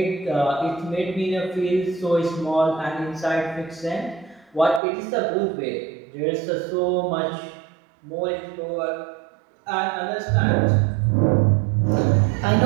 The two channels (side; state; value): left; drops out; at 4.8 s